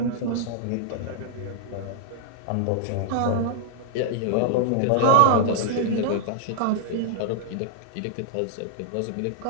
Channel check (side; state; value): both; different; correlation -0.01